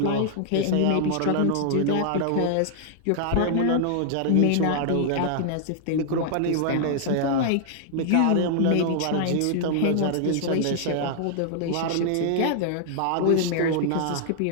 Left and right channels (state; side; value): different; both; correlation -0.01